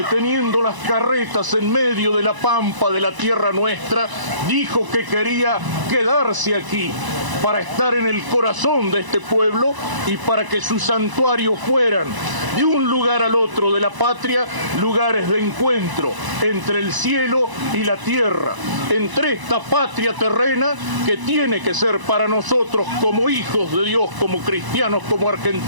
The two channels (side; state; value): left; late; 1.0 ms